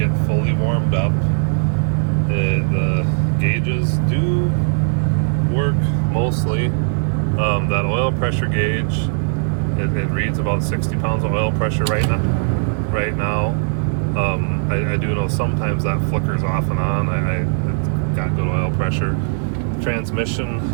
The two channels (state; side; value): silent; left; digital silence